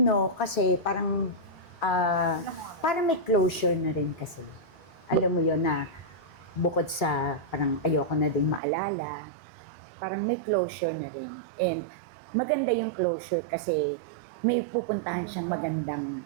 kasi parang may closure na rin kasi. Alam mo yon na bukod sa parang ayoko na ding maalala, parang may closure na rin. And maganda yung closure kasi may pupuntahan siyang magandang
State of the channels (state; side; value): drops out; left; at 8.6 s